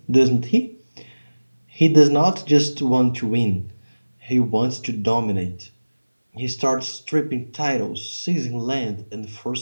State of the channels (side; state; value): both; inverted; correlation -1.00